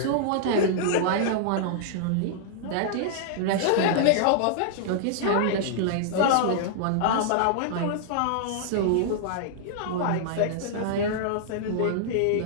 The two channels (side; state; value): both; different; correlation -0.01